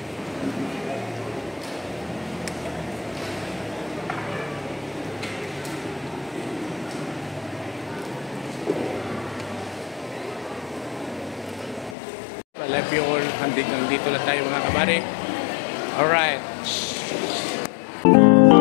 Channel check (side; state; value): right; drops out; at 12.0 s